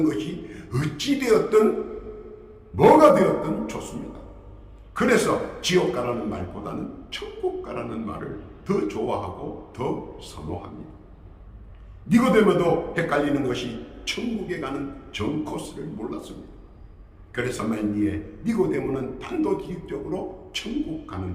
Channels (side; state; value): both; identical; correlation 1.00